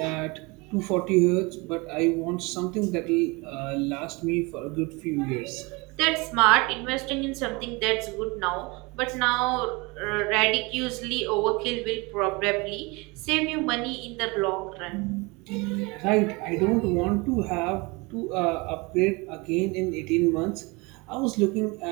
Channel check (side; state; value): left; quieter; 26.5 dB